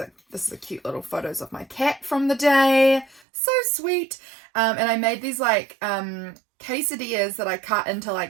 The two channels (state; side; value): drops out; left; at 3.2 s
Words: is a cute little photos of my cat from the day. So sweet. And I made these like quesadillas that I cut into